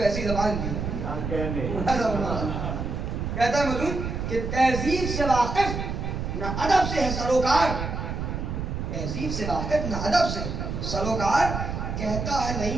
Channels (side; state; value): right; noise; rumble, 4 dB below the sound